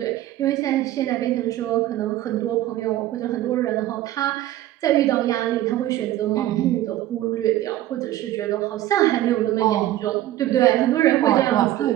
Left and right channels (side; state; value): left; quieter; 14.2 dB